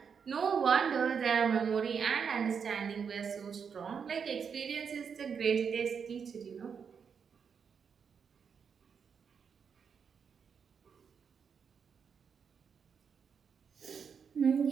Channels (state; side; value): quieter; left; 6.6 dB